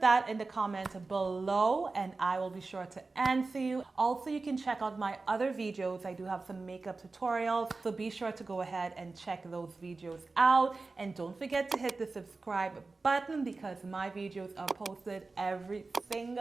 that in the comments below and I will be sure to answer you. Also, you can check out my other videos. I do have some makeup tutorials, so be sure to go ahead and check those videos out. And don't forget to hit the subscribe button because my videos are posted every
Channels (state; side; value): quieter; left; 3.7 dB